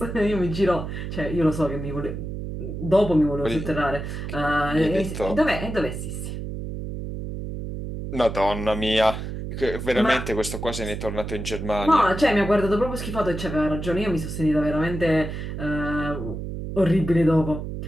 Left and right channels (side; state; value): right; noise; hum, 6 dB below the sound